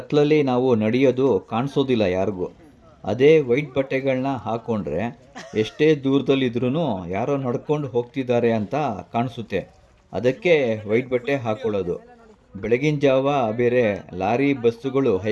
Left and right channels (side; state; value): both; identical; correlation 1.00